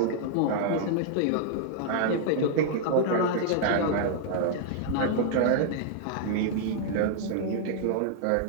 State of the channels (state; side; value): different; both; correlation -0.01